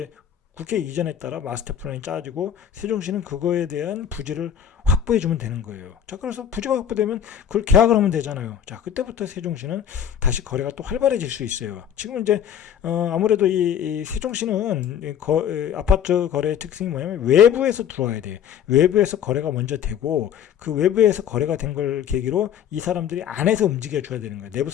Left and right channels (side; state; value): right; quieter; 9.1 dB